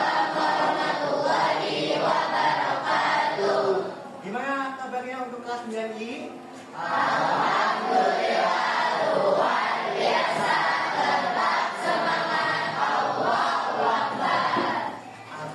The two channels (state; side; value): identical; both; correlation 1.00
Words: warahmatullahi wabarakatuh. Gimana kabarnya untuk kelas 9I? Alhamdulillah luar biasa. Tetap semangat. Allahu Akbar.